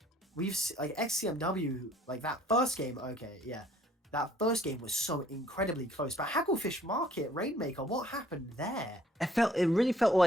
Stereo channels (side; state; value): both; normal; correlation 0.60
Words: like XCMW, like that first game, okay, yeah. That first game was so incredibly close. But Hagglefish Market, Rainmaker, what happened there? It really felt